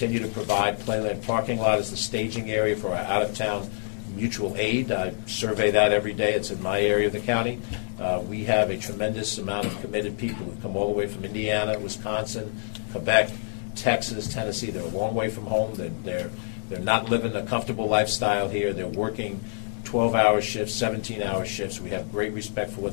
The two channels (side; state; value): right; silent; digital silence